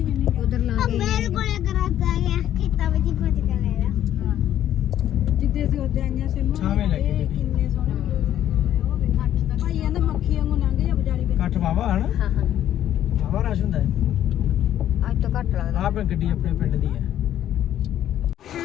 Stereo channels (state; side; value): quieter; right; 11.4 dB